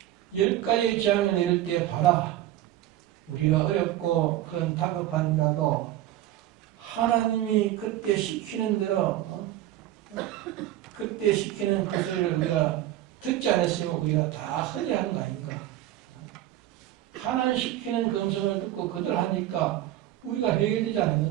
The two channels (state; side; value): quieter; left; 13.6 dB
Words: 10가지의 재앙을 내릴 때 봐라. 우리가 어렵고 그런 다급한 일이라도 하나님이 그때 시키는 대로 그때 시키는 그 소리를 우리가 듣지 않았으면 우리가 다 흔히 하는 거 아닌가. 하나님 시키는 그 음성을 듣고 그들 하니까 우리가 해결되지